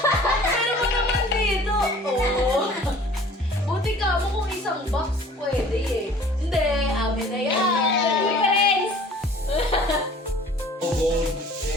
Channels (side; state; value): both; normal; correlation 0.49